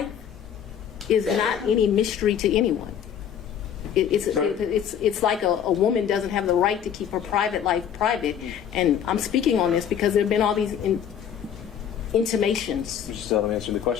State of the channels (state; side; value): quieter; right; 8.7 dB